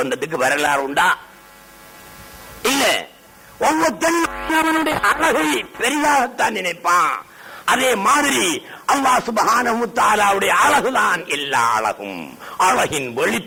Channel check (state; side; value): identical; both; correlation 1.00